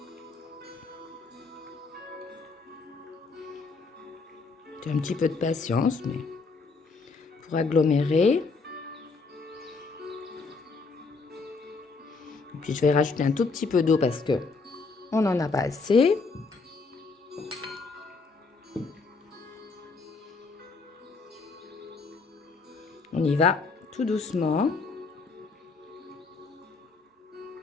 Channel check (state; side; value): quieter; right; 4.3 dB